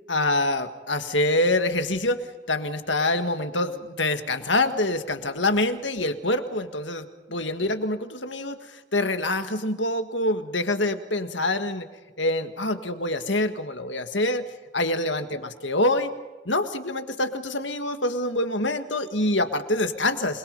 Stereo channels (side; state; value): both; normal; correlation -0.10